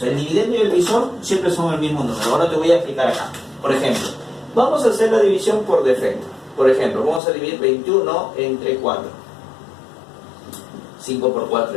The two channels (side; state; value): right; drops out; at 7.2 s